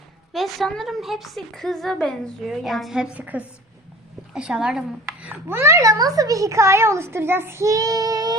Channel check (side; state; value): both; normal; correlation 0.43